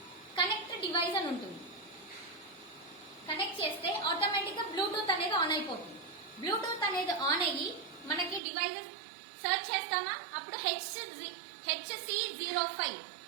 కనెక్ట్ డివైస్ అని ఉంటుంది. కనెక్ట్ చేస్తే ఆటోమేటిక్ గా బ్లూటూత్ అనేది ఆన్ అయిపోతుంది. బ్లూటూత్ అనేది ఆన్ అయ్యి మనకి డివైసెస్ సర్చ్ చేస్తామా, అప్పుడు HC05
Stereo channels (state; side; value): drops out; left; at 8.4 s